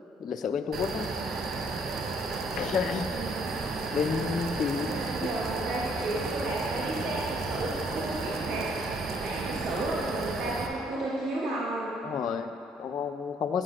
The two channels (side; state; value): both; normal; correlation 0.65